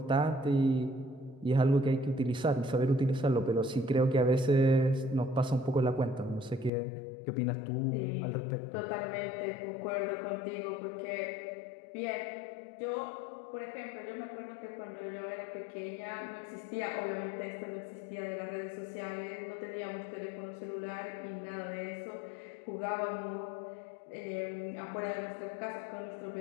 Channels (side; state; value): right; drops out; at 6.7 s